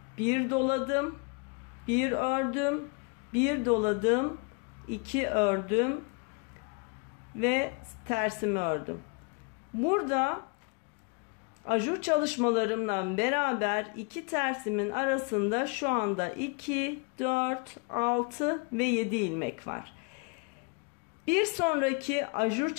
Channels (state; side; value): quieter; right; 33.8 dB